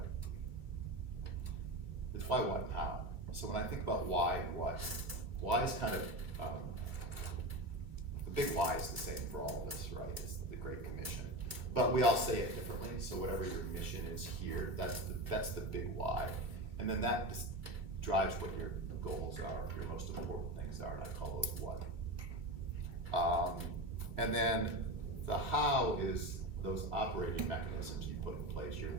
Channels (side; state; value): left; late; 2.5 ms